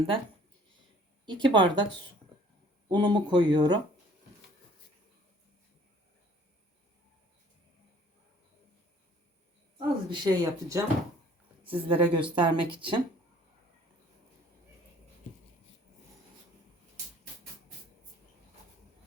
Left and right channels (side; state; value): both; normal; correlation 0.55